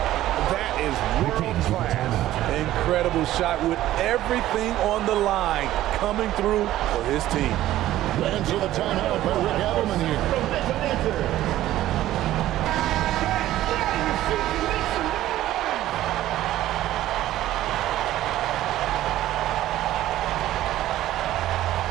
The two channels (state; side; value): quieter; left; 14.2 dB